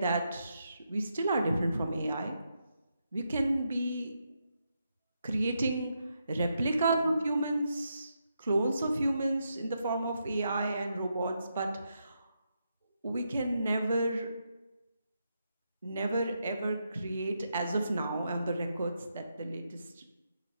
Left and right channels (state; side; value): inverted; both; correlation -0.82